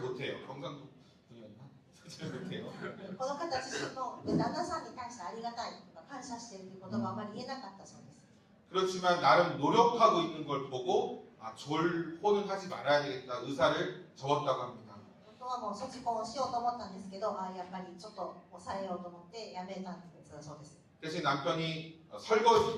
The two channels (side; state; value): both; identical; correlation 1.00